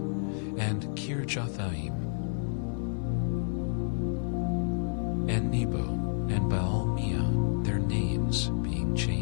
and Kirjathaim, and Nebo, and Baal-Meah, their names being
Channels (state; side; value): silent; right; digital silence